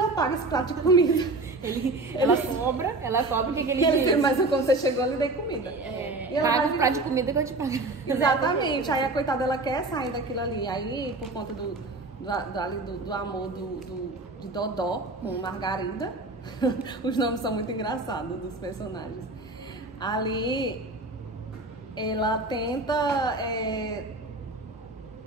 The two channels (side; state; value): left; quieter; 3.1 dB